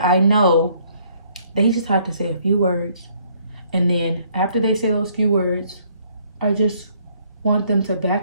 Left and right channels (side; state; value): both; inverted; correlation -0.64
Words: I know they just have to say a few words, and then after they say those few words, I just want them to